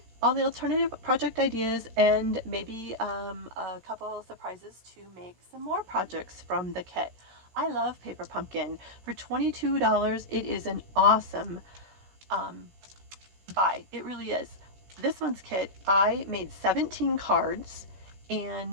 all the alternative project ideas and maybe a couple surprises to make some more projects from the kit. I love Paper Pumpkin. For $22, it is an awesome buy. It really is. This month's kit, I made 17 cards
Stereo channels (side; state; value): left; late; 16 ms